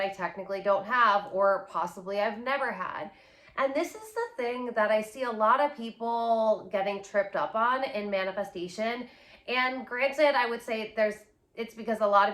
technically don't have or possibly I've never had? And this is the thing that I see a lot of people getting tripped up on in manifestation. And granted, I would say it's because a lot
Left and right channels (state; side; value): identical; both; correlation 1.00